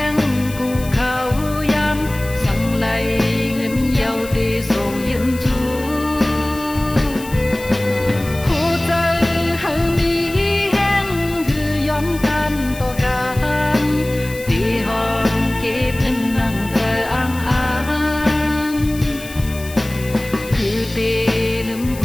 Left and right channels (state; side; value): noise; left; hiss, 15 dB below the sound